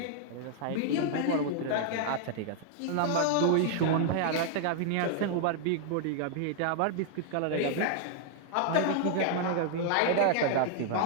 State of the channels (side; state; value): both; different; correlation 0.00